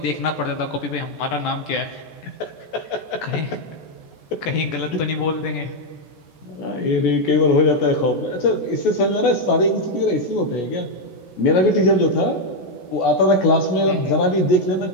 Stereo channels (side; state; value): right; late; 14 ms